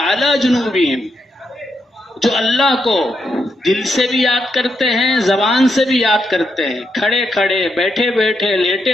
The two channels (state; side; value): normal; both; correlation 0.81